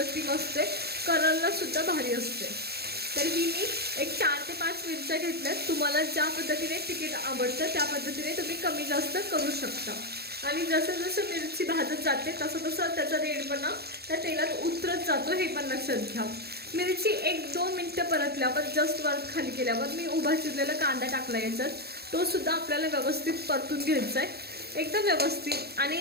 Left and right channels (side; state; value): left; late; 0.46 ms